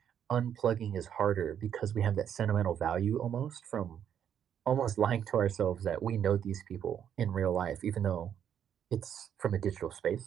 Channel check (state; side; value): quieter; left; 9.0 dB